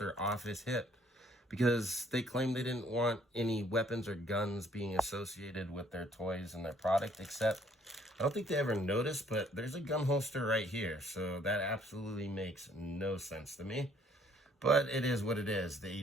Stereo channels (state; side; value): normal; both; correlation 0.63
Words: off his hip because they claimed they didn't want any weapons or guns being associated with their toys and their product, except I don't think they ever noticed, but there's a gun holster right here, so that absolutely makes no sense to me. But it is what it is. The